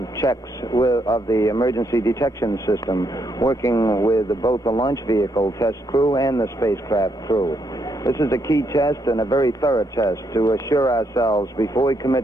checks of the emergency detection system, working with both the launch vehicle test crew and the spacecraft crew. This is a key test and a very thorough test to assure ourselves before we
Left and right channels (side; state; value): both; normal; correlation 0.76